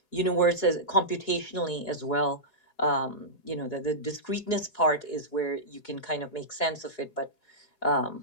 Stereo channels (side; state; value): right; late; 4.8 ms